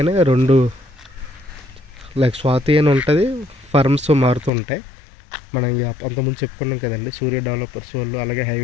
రెండు లైక్ స్వాతి అని ఉంటుంది, ఫర్మ్స్ మారుతుంటాయి. మనం అంతకుముందు చెప్పుకున్నాం కదండి, సూర్య డెవలపర్స్ వాళ్ళు అలాగే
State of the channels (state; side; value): drops out; right; at 4.5 s